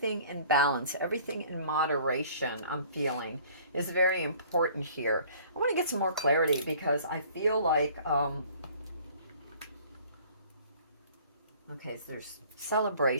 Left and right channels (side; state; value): both; inverted; correlation -0.52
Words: in balance, everything in moderation, I'm feeling is very important here. I want to get some more clarity because I feel like, okay, so there's